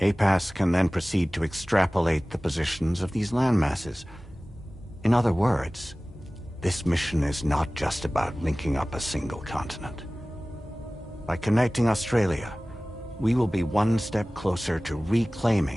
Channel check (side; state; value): both; normal; correlation 0.98